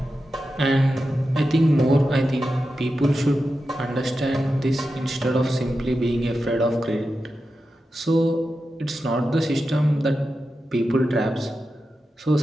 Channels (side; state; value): both; normal; correlation 0.90